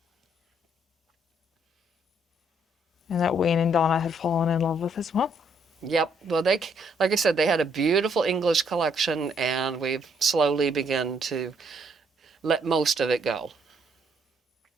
And that Wayne and Donna had fallen in love with as well. Yep. Well, like I said, they had a beautiful English collection, and we've slowly begun to let most of it go.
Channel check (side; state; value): both; normal; correlation 0.69